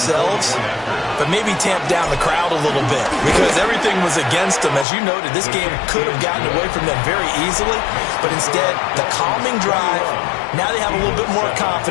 but maybe tamp down the crowd a little bit because everything was against them. As you noted, this game could have gotten away from them very easily, but instead, the calming drive, now they have a little bit more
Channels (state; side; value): drops out; right; at 4.9 s